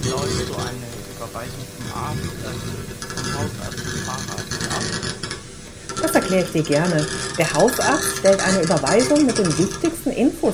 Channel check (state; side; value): identical; both; correlation 1.00